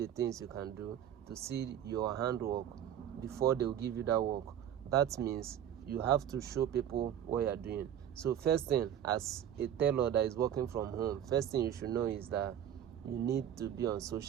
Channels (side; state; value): left; quieter; 10.0 dB